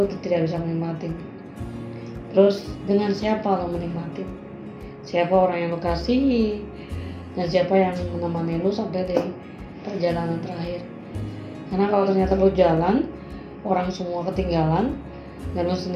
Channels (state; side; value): identical; both; correlation 1.00